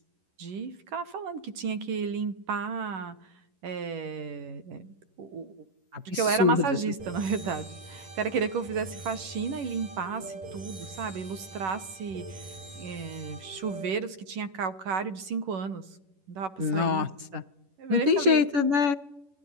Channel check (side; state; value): left; late; 11 ms